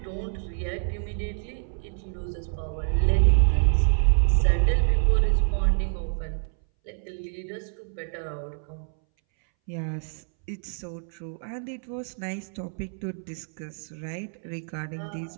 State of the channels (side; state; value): left; silent; 60 dB below the other